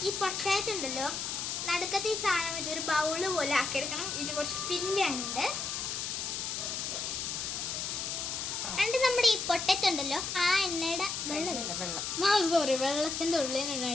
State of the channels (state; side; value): noise; left; hiss, 3 dB below the sound